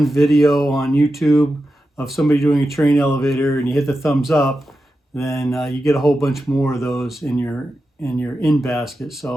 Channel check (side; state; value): both; normal; correlation 0.90